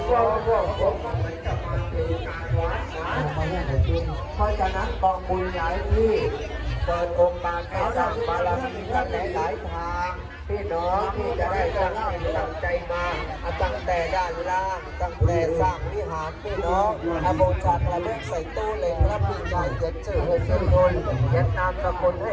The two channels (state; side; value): identical; both; correlation 1.00